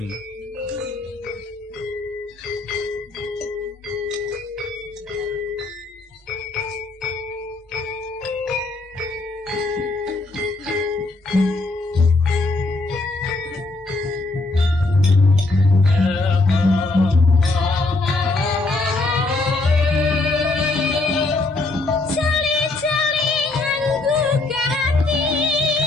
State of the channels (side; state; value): right; quieter; 3.2 dB